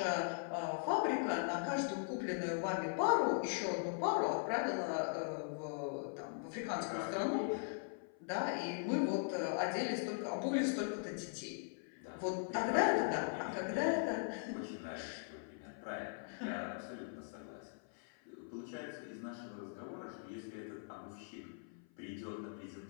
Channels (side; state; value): right; silent; 51 dB below the other